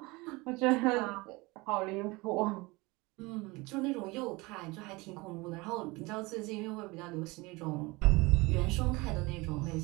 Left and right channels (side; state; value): left; quieter; 23.8 dB